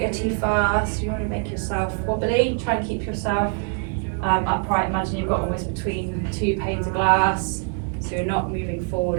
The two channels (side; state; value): left; quieter; 39.0 dB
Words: too fast. You want to make yourself wobbly. Try and keep yourself upright. Imagine you've got almost between two panes of glass, so you're not moving